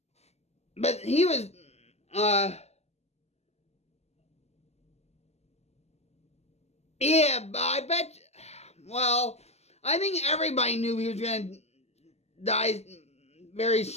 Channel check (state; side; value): late; right; 0.31 ms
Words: but he was, yeah, but I bet, well, I think everybody knew he was going to die very